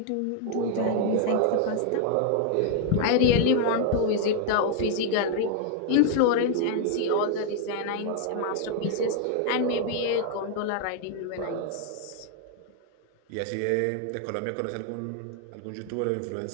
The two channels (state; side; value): different; both; correlation 0.00